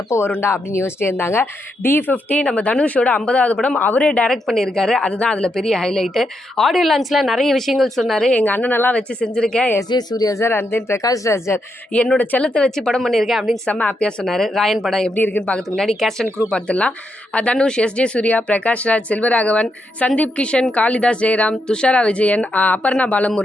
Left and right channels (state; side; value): normal; both; correlation 0.82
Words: எப்போ வரும்டா அப்படின்னு யோசிச்சிட்டே இருந்தாங்க. D50 நம்ம தனுஷோட 50வது படம் அவரே டைரக்ட் பண்ணியிருக்காரு. அதுதான் அதில் பெரிய ஹைலைட்டு. ஆடியோ லான்ச்சில் நிறைய விஷயங்கள் சொன்னார். எங்கள் அண்ணனெல்லாம் வச்சு செஞ்சுருக்கேன், S J Suryah sir and then Prakash Raj sir என்னோட செல்லத்தை வச்சு படம் பண்ணியிருக்கேன் அப்படின்னு செம்ம ஹாப்பியாக சொன்னார். ராயன் படம் எப்படி இருக்குன்னு பார்க்கறதுக்கு முன்னாடி கேஸ்ட் அண்ட் க்ரூ பார்த்துடலாம். தனுஷ், எஸ்ஜே சூர்யா, பிரகாஷ் ராஜ், செல்வராகவன், சந்தீப் கிஷன், காளிதாஸ் ஜெயராம், துஷாரா விஜயன், அபர்ணா